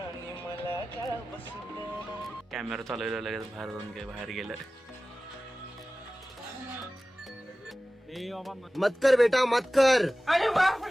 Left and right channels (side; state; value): both; normal; correlation 0.97